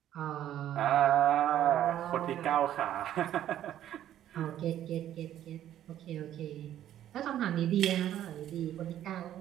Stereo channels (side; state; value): left; quieter; 11.6 dB